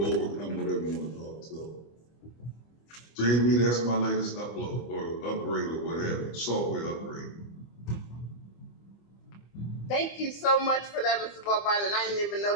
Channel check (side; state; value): right; late; 25 ms